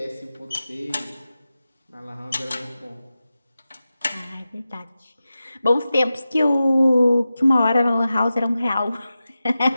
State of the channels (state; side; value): inverted; both; correlation -0.93